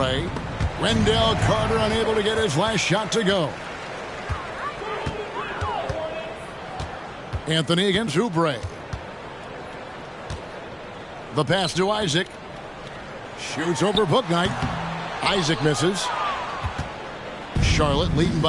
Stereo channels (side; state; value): both; identical; correlation 1.00